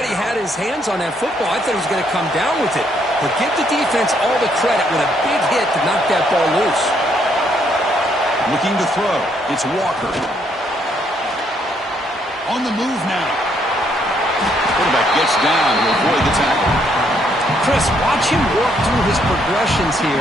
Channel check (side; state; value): both; normal; correlation 0.71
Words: he had his hands on that football. I thought he was going to come down with it. But give the defense all the credit with a big hit to knock that ball loose. Looking to throw. It's Walker. On the move now. Quarterback gets down to avoid the tackle. Chris, watch him work through his progressions